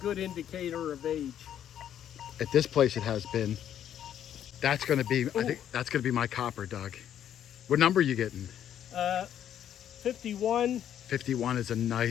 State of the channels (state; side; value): quieter; right; 10.2 dB